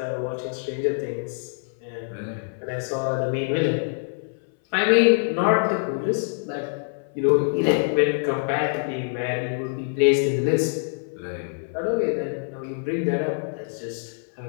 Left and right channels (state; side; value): silent; right; 58 dB below the other